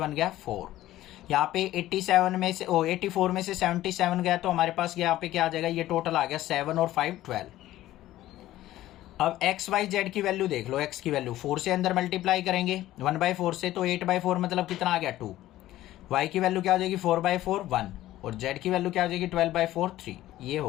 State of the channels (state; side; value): quieter; right; 14.8 dB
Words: गया 4। यहाँ पे 84 में से 77 गया तो हमारे पास यहाँ पे क्या आ जाएगा, ये टोटल आ गया 7 और 5 12। अब x y z की वैल्यू देख लो, x की वैल्यू 4 से अंदर मल्टीप्लाई करेंगे 1/4 से, तो 8/4 मतलब कितना आ गया 2। y की वैल्यू क्या हो जाएगी 4/4 1, और z की वैल्यू क्या हो जाएगी 12/4 3। ये